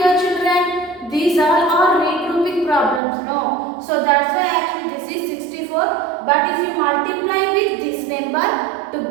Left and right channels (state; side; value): drops out; left; at 3.0 s